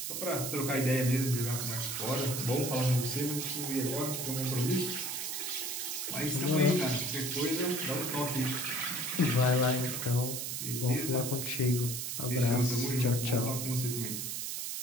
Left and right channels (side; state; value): right; noise; hiss, 3 dB below the sound